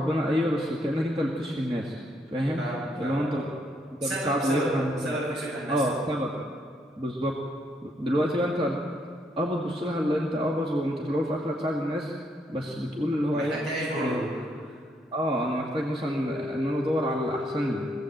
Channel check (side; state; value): both; normal; correlation 0.74